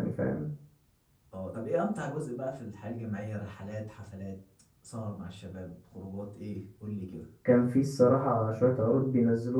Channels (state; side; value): identical; both; correlation 1.00